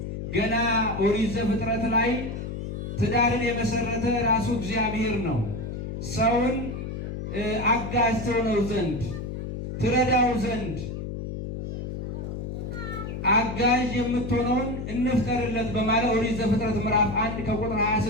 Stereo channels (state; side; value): noise; left; hum, 6 dB below the sound